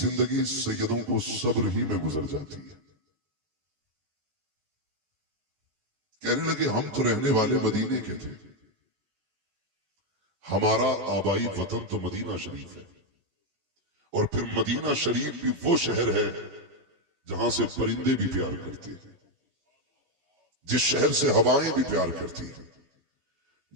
سیدوں کو صبر ہی میں گزر جاتی ہے۔ کہنے لگے ہم تو رہنے والے مدینے کے تھے، ہمارا آبائی وطن تو مدینہ شریف ہے، اور پھر مدینہ شریف بھی وہ شہر ہے جہاں سے پرندے بھی پیار کرتے ہیں، جس شہر سے ہوائیں بھی پیار کرتی ہیں،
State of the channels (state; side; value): late; left; 14 ms